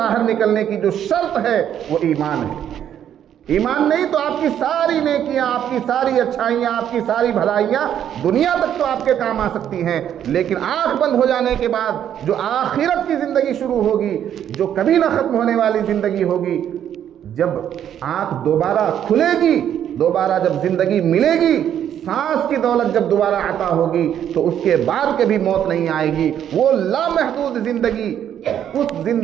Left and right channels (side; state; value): left; quieter; 9.9 dB